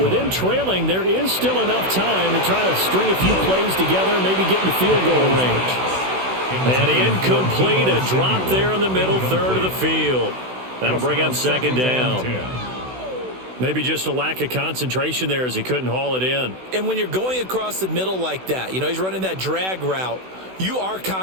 them trailing, there is still enough time to try to string a few plays together, maybe get into field goal range. And incomplete, a drop there in the middle third of the field. That'll bring up 2nd down. Maybe just a lack of concentration there as he couldn't haul it in. And when you're going across the middle like that, you know, he's running that drag route, you are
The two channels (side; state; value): left; late; 16 ms